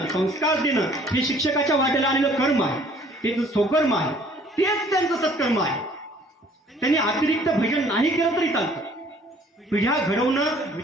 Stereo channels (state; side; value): normal; both; correlation 0.57